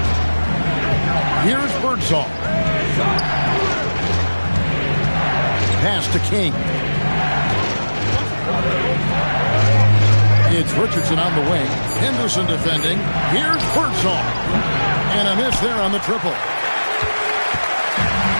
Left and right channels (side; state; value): both; inverted; correlation -1.00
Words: Here's Birdsall. Pass to King. It's Richardson on the wing. Henderson defending. Here's Birdsall. And a miss there on the triple.